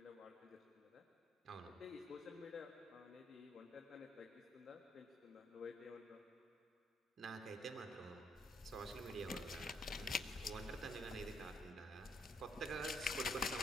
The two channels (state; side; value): normal; both; correlation 0.72